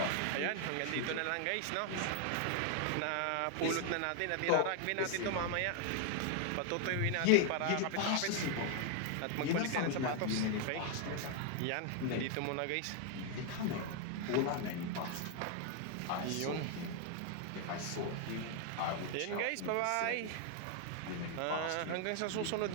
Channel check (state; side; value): different; both; correlation 0.00